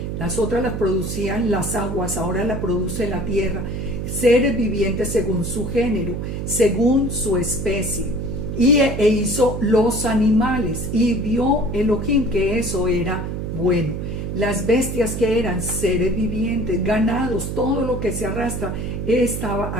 las otras las producían las aguas, ahora la produce la tierra, seres vivientes según su género, según su especie. E hizo los animales, y vio Elohim que eso era bueno. Las bestias que eran seres vivientes, ganados, todo lo que se arrastra,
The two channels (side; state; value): right; noise; hum, 4 dB below the sound